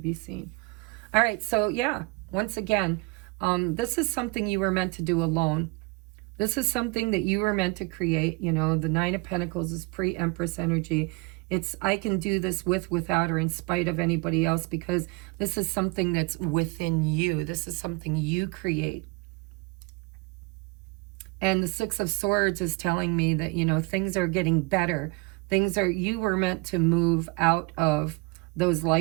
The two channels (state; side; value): quieter; left; 26.6 dB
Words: be seen. All right, so yeah, once again, this is something you were meant to do alone. This is something that you were meant to create. You know, the 9 of Pentacles is pre-Empress energy. It's, I can do this with, without, or in spite of anybody else, because this is something that's within you. This is something you create. And the 6 of Swords is telling me that, you know, things are getting better. Things are, you were meant to move out of those